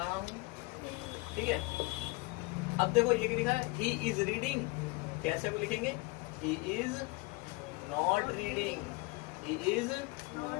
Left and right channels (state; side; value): quieter; right; 24.7 dB